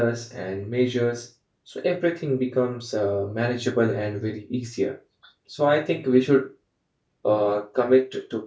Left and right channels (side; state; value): both; identical; correlation 1.00